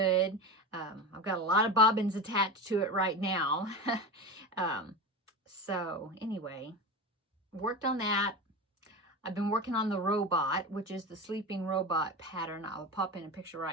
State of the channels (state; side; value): normal; both; correlation 0.25